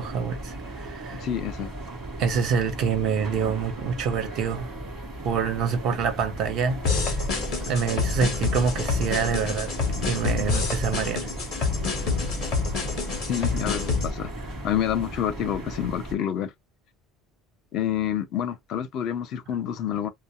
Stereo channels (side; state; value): both; normal; correlation 0.36